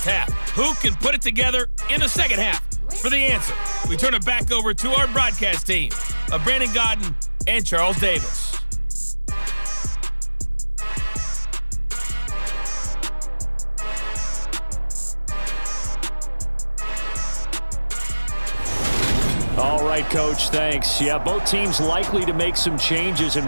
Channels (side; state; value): both; inverted; correlation -1.00